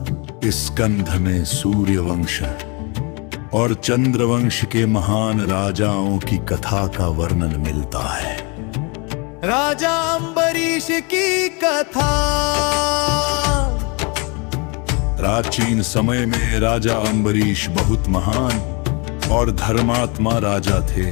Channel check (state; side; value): quieter; right; 31.1 dB